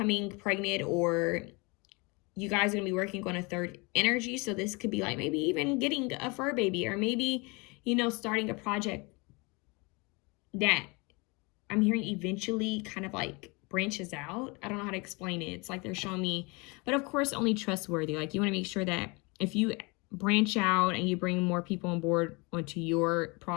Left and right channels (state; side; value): quieter; right; 28.1 dB